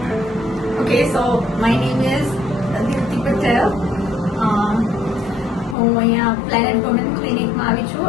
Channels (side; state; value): right; drops out; at 5.8 s